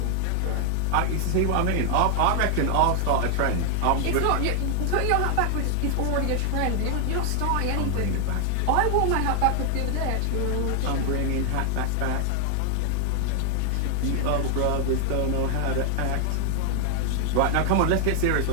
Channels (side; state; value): both; different; correlation 0.00